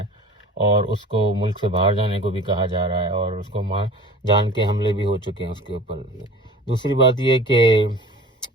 اور اس کو ملک سے باہر جانے کو بھی کہا جا رہا ہے، اور اس کو جان کے حملے بھی ہو چکے ہیں اس کے اوپر۔ دوسری بات یہ کہ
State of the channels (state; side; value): normal; both; correlation 0.42